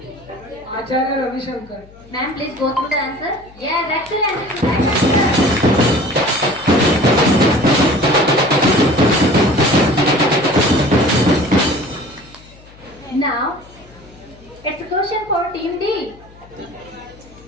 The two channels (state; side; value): noise; left; hum, 24 dB below the sound